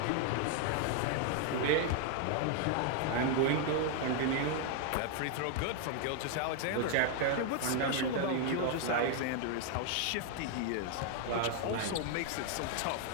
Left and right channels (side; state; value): both; different; correlation 0.00